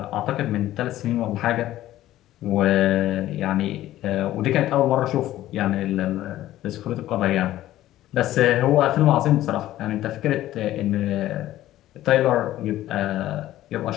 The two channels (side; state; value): right; quieter; 14.3 dB